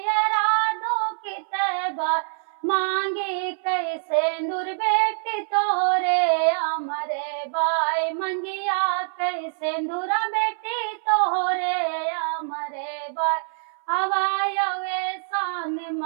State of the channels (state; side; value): silent; left; 62 dB below the other